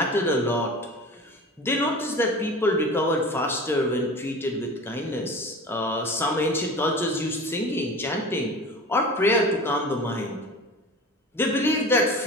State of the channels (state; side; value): normal; both; correlation 0.36